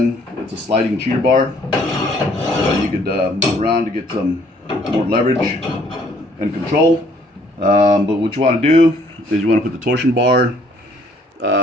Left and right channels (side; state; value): both; normal; correlation 0.62